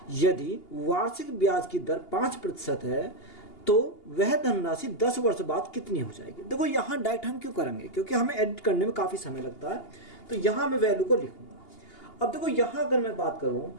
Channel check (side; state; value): right; late; 2.8 ms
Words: यदि वार्षिक ब्याज की दर 5% है तो वह धनराशि 10 वर्ष बाद कितनी हो जाएगी। देखो यहाँ डायरेक्ट हम क्यों करेंगे, क्योंकि हमें एडिट करने में काफ़ी समय लगता है। तो यहाँ मैं वैल्यू को लिखूंगा। अब देखो यहाँ अगर मैं बात करूँ